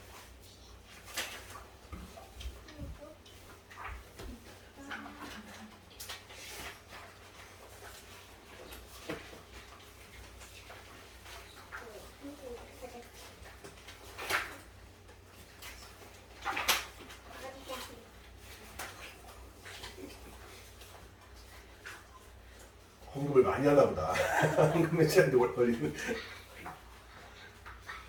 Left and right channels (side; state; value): both; identical; correlation 1.00